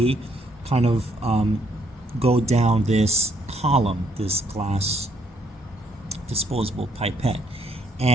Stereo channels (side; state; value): both; normal; correlation 0.70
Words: kind of go down this column, this glass disposable pipette.